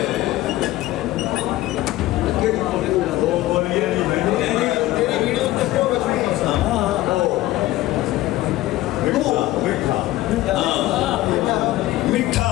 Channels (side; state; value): right; quieter; 16.2 dB